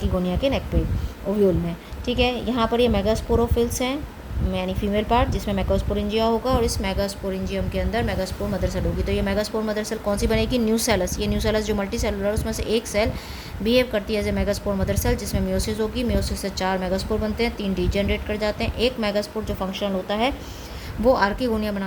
के नेक पे, ओव्यूल में। ठीक है, यहाँ पर ये मेगास्पोरोफिल्स हैं यानी फीमेल पार्ट जिसमें मेगास्पोरेंजिया होगा, और इस मेगास्पोरेंजियम के अंदर मेगास्पोर मदर सेल होगी। तो ये मेगास्पोर मदर सेल कौन सी बनेगी, न्यूसेलस। ये न्यूसेलस जो मल्टी सेलुलर उसमें से एक सेल बिहेव करती है as a megaspore mother cell, जिसमें म्योसिस होगी। म्योसिस से 4 मेगास्पोर बनते हैं, 3 डीजेनरेट कर जाते हैं। एक मेगास्पोर जो फंक्शनल होता है वो आर्किगोनिया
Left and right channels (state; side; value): identical; both; correlation 1.00